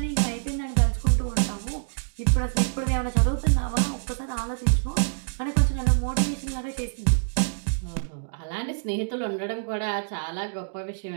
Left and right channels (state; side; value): silent; left; digital silence